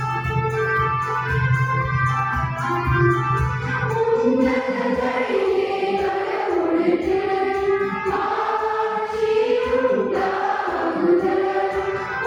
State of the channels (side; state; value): both; identical; correlation 1.00